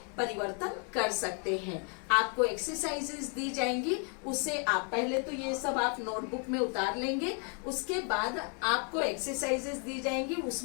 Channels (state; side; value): quieter; right; 39.1 dB